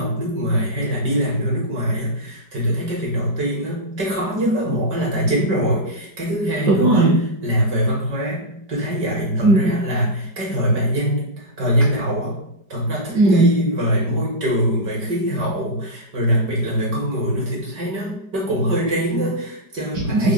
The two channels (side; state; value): left; late; 5.2 ms